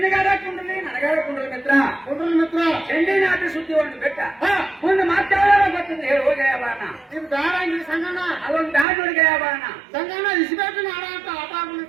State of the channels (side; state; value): left; drops out; at 8.8 s